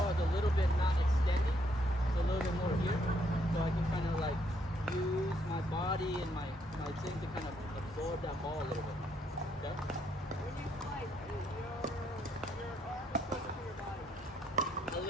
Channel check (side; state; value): both; normal; correlation 0.72